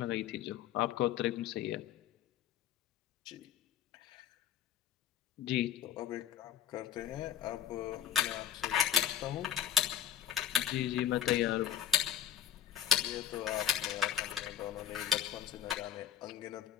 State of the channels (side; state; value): right; quieter; 10.3 dB